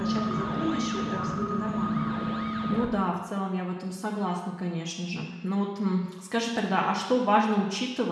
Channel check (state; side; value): identical; both; correlation 1.00